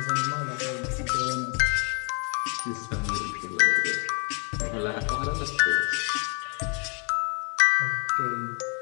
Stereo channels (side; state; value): right; quieter; 36.7 dB